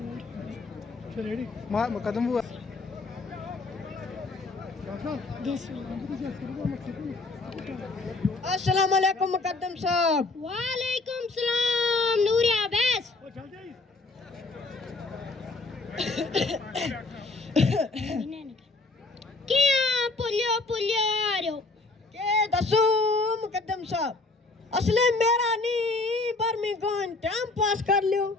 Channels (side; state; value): right; quieter; 3.4 dB